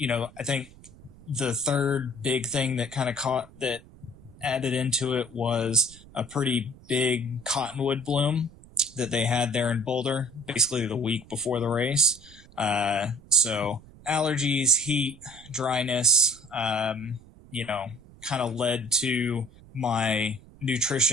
think the third big thing that kind of that added into it was a pretty big cottonwood bloom that they had there in Boulder, basically the week before the race. So allergies, heat, dryness, kind of led to my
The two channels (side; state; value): right; noise; rumble, 22 dB below the sound